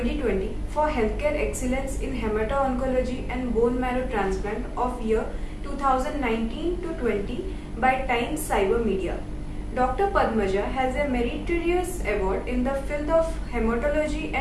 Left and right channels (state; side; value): identical; both; correlation 1.00